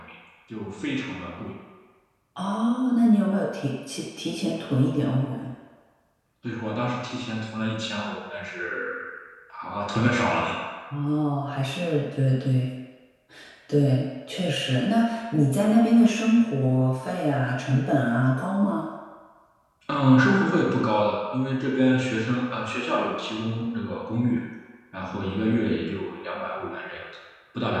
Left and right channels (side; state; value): both; identical; correlation 1.00